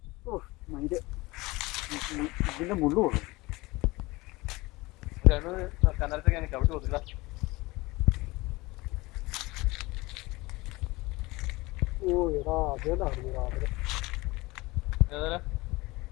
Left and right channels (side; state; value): right; quieter; 21.9 dB